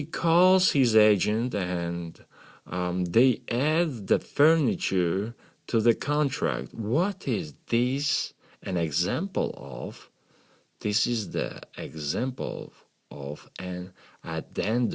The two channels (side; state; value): both; identical; correlation 1.00